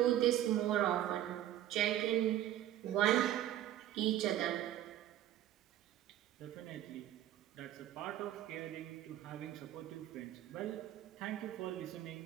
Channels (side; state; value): left; quieter; 12.5 dB